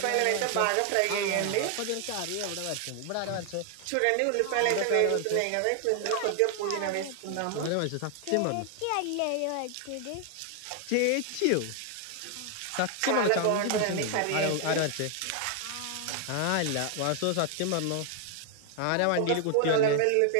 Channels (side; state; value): both; different; correlation 0.00